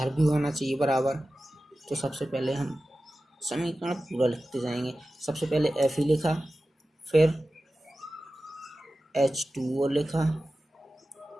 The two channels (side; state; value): both; normal; correlation 0.95